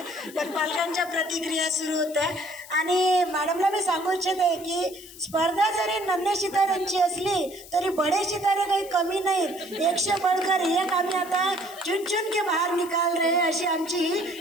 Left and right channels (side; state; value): left; noise; hiss, 18 dB below the sound